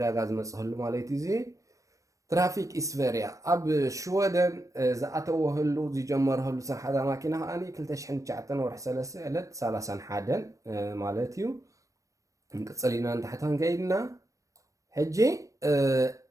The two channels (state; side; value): late; left; 0.16 ms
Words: ዝመፅህሉ ማለት እዩ እዚ ትራፊክ ኢስቨርያ ኣብ ሽወደን ዝኣተወህሉ ዝጀመረህሉ ስራሕታ ማኪና ከዓኒ 2009 ወርሒ 3 ዕለት 31 ማለት እዩ ንቅፅል ኢና ንታሕታን ከይድና ሕጂ